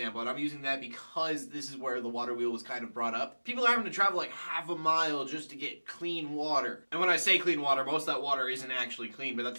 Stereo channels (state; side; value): inverted; both; correlation -1.00